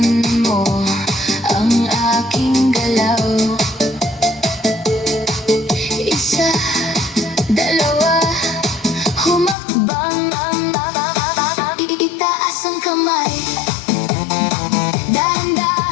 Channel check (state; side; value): drops out; right; at 9.6 s